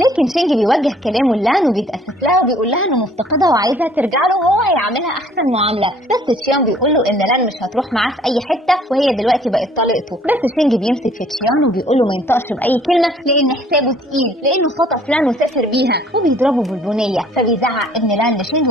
لكن شينج بيوجه كلامه لان وبيتأسف لها وبيقول لها انه مفتقدها وعايزها ترجع له وهو هيعملها احسن معامله، بس تشيان بيقول له ان لان مش هتروح معاه في اي حته وهي دلوقتي بقت طليقته، بس شينج بيمسك في تشيان وبيقول له ما ينطقش باي كلمه لان حسابه تقيل، لانه خطف لان وسافر بيها، وبيضربه بالبنيه، فبيزعق ابن لان لشينج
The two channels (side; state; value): both; normal; correlation 0.57